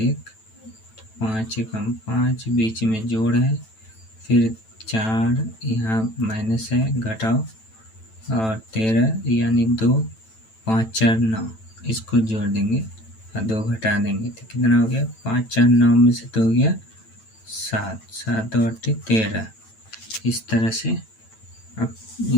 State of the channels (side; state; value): right; late; 9.1 ms